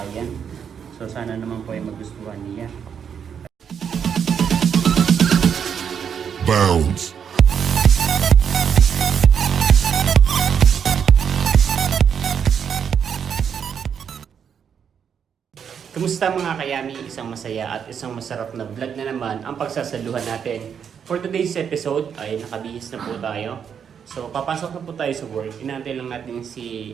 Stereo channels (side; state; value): left; quieter; 7.6 dB